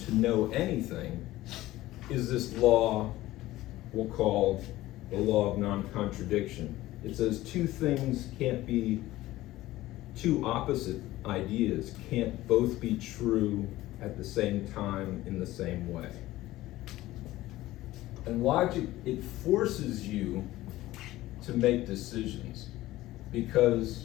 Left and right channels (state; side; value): quieter; right; 16.5 dB